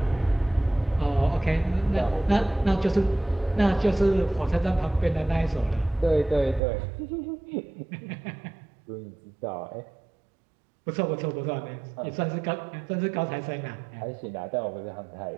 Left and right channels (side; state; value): left; drops out; at 6.6 s